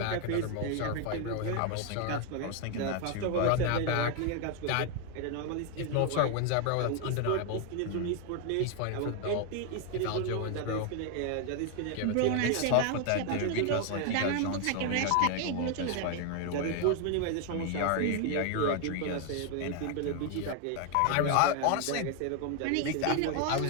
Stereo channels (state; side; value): different; both; correlation 0.00